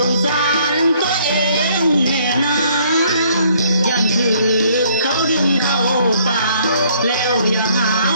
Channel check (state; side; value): inverted; both; correlation -0.63